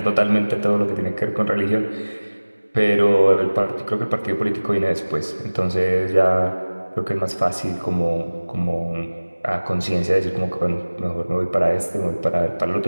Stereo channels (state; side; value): inverted; both; correlation -1.00